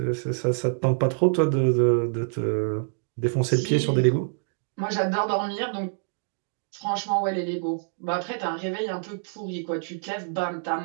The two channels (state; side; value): silent; left; digital silence